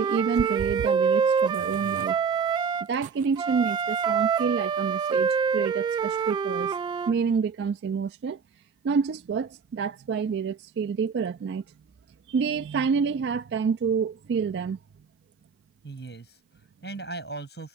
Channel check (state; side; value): quieter; left; 5.9 dB